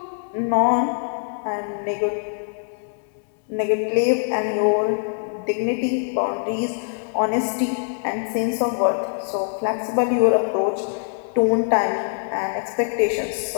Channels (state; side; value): silent; right; digital silence